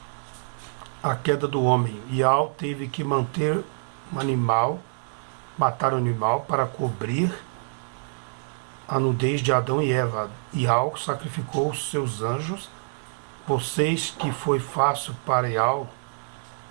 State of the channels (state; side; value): silent; left; digital silence